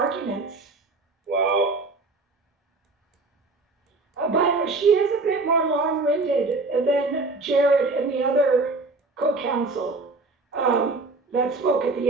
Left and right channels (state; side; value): quieter; left; 3.5 dB